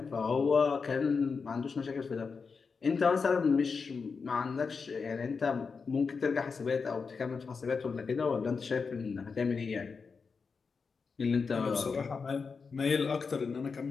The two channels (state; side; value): quieter; right; 5.1 dB